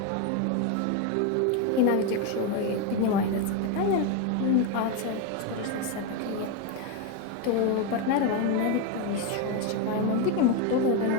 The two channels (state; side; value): different; both; correlation 0.02